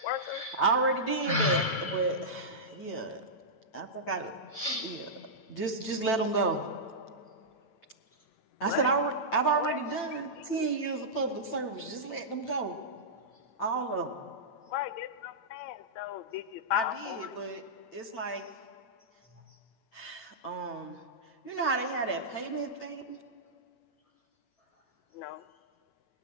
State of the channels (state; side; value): late; right; 9.0 ms